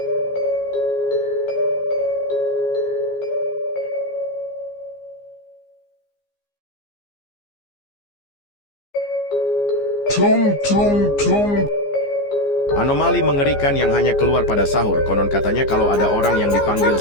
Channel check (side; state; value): right; late; 15 ms